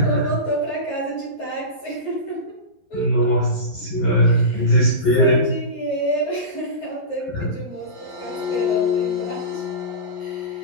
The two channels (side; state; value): right; late; 11 ms